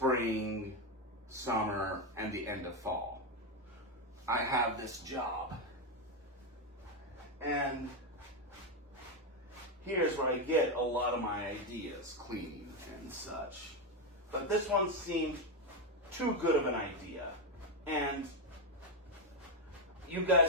summer, and the end of fall. I have this job. And here's where I get a lot of my ideas, cleaning and such. But this one seemed too good of an idea. And you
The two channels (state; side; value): normal; both; correlation 0.07